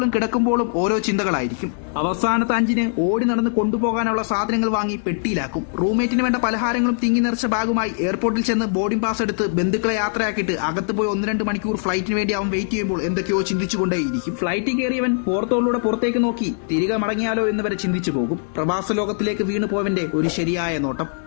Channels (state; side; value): silent; right; 65 dB below the other